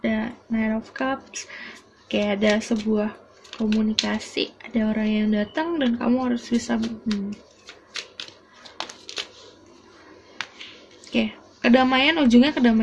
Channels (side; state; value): both; identical; correlation 1.00